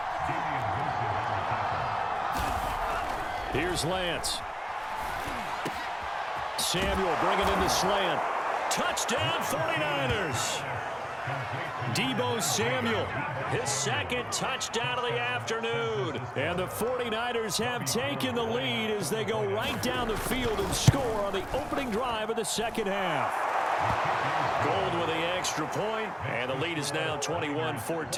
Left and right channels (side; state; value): both; identical; correlation 1.00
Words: Here's Lance. Samuel bringing in the slant. Touchdown 49ers. Deebo Samuel, his 2nd touchdown of the afternoon. And the 49ers have taken the lead as they go right down the field and score on the opening drive of the second half. Gold with the extra point, and the lead is now